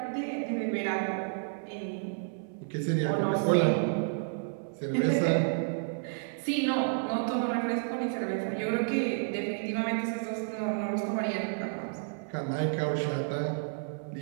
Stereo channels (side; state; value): left; silent; 57 dB below the other